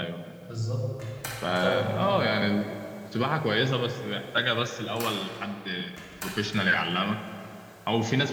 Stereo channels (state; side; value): identical; both; correlation 1.00